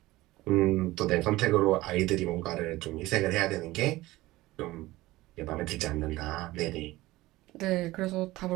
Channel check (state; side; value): quieter; left; 18.2 dB